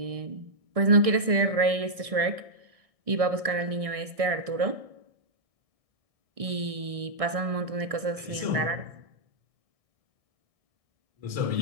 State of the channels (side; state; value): left; late; 1.6 ms